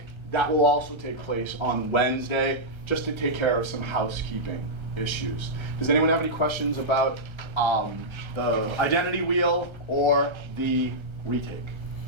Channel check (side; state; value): left; late; 1.3 ms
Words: that will also take place on Wednesday, just to take care of some housekeeping issues. Does anyone have any questions about the identity wheel or the retake?